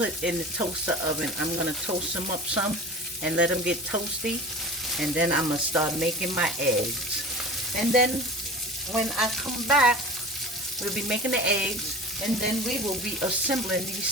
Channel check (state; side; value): normal; both; correlation 0.36